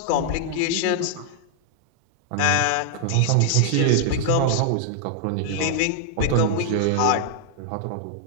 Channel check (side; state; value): both; different; correlation -0.01